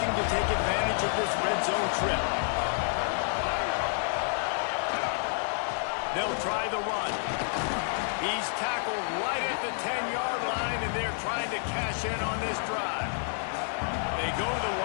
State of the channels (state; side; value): silent; right; 58 dB below the other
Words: to take advantage of this red zone trip. They'll try the run. He's tackled right at the 10-yard line, and they're trying to cash in on this drive. They go to the